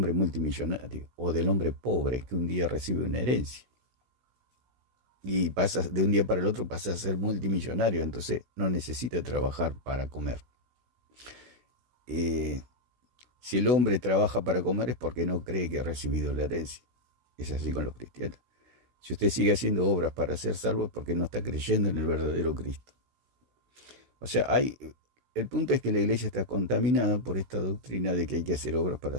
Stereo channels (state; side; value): late; left; 16 ms